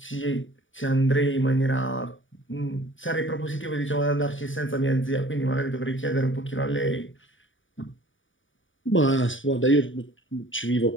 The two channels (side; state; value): right; late; 0.56 ms